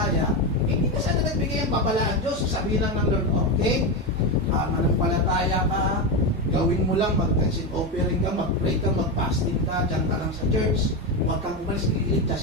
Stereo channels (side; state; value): both; normal; correlation 0.13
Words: hindi na sana nagbigay ang babala ang Diyos. Sabihin lang ng Lord, okay, mananampalataya ka, gawin mo lang, mag-consent offering ka, mag-pray ka, mag-fasting ka, dyan ka lang sa church, huwag kang umalis,